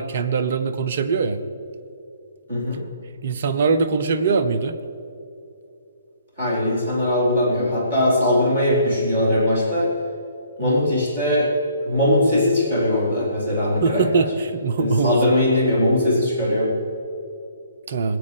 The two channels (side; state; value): both; inverted; correlation -0.60